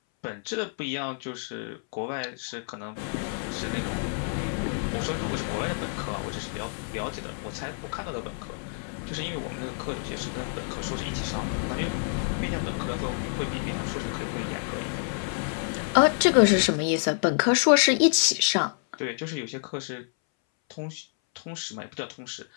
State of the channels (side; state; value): right; silent; 59 dB below the other